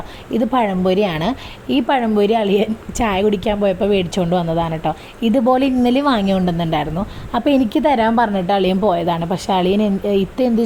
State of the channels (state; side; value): identical; both; correlation 1.00